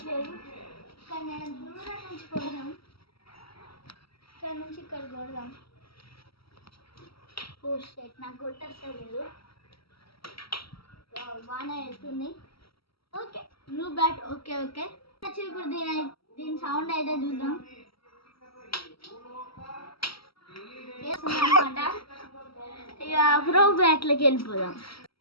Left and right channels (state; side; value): late; right; 0.75 ms